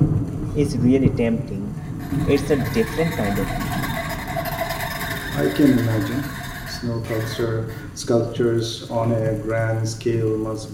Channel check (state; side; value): identical; both; correlation 1.00